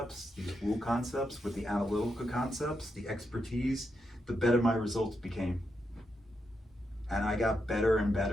these woo concepts, with the analytical concepts, the expertise, the better my results became. And I got better and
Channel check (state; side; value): normal; both; correlation 0.84